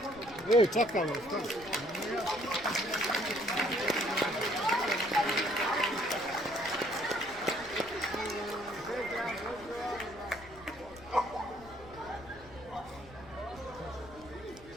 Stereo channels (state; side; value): noise; left; rumble, 20 dB below the sound